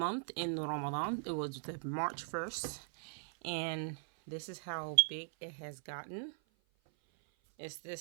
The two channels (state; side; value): silent; left; 51 dB below the other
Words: in Ramadan. It was the March 1st. And this is how big it has gotten. It's